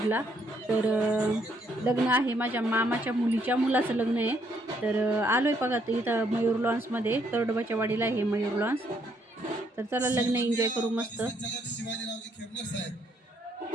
तर लग्न आहे माझ्या मामाच्या मुलीच्या मुलाचं लग्न आहे। तर आलोय बघा इथं मयूर लॉन्समध्ये तरडोबाच्या वाडीला आहे मयूर लॉन्स। तर चला लग्न एन्जॉय करू मस्त। शिवाजीरावजी खेमनर साहेब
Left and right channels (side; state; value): both; normal; correlation 0.71